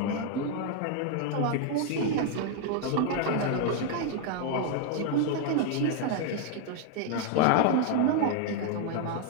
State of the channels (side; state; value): both; different; correlation 0.00